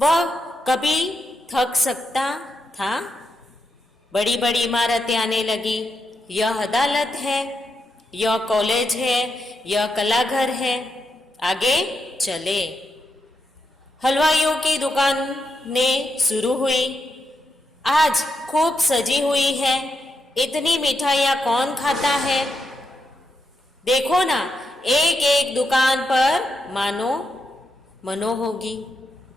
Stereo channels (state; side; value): normal; both; correlation 0.84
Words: कभी थक सकता था। बड़ी बड़ी इमारतें आने लगी। यह अदालत है, यह कॉलेज है, यह कलाघर है। आगे चले। हलवाइयों की दुकानें शुरू हुई। आज खूब सजी हुई है। इतनी मिठाइयाँ कौन खाता है? देखो ना, एक एक दुकान पर मानो मनो होगी।